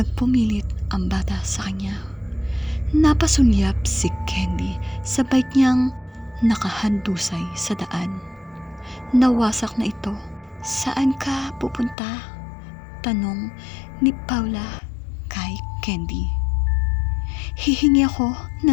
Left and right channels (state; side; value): drops out; right; at 12.0 s